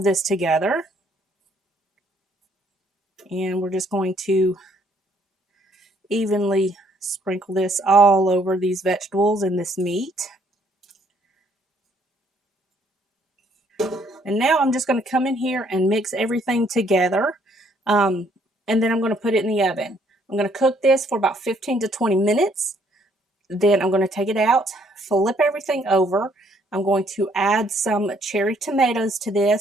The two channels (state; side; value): normal; both; correlation 0.66